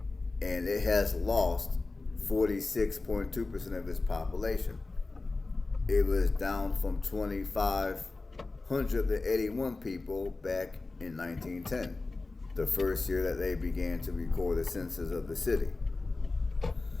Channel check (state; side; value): quieter; right; 3.5 dB